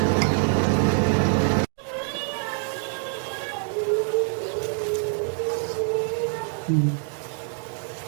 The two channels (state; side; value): silent; left; 62 dB below the other